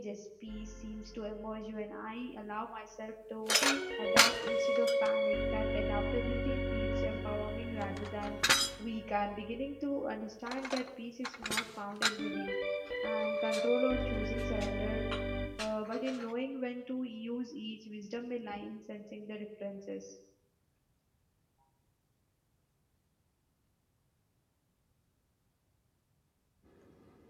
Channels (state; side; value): identical; both; correlation 1.00